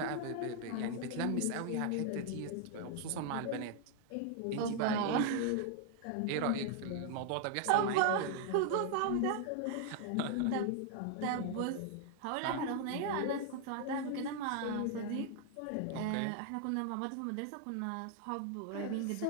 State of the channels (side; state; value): both; different; correlation 0.00